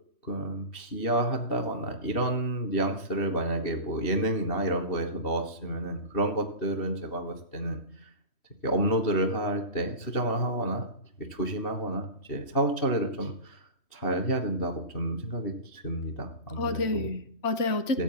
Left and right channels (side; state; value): right; late; 3.1 ms